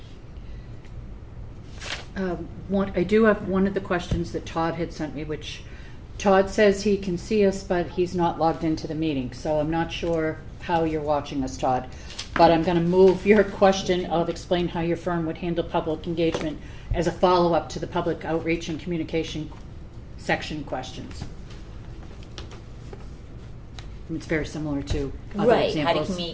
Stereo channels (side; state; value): both; identical; correlation 1.00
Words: I do have one of the questions that Todd had sent me, which Todd says he can see us, but he's not logged into the meeting, so I'm not sure how you're watching us, Todd. But I'm going to move your question of explain how your firm would handle public engagement as a follow-up to the public outreach and communication section questions. It's very similar to other right, how to examples.